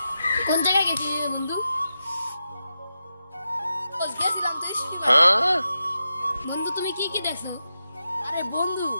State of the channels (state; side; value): inverted; both; correlation -0.88